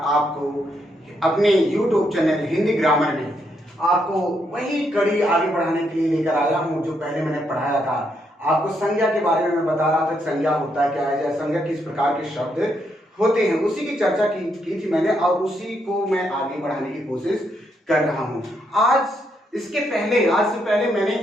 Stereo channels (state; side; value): normal; both; correlation 0.77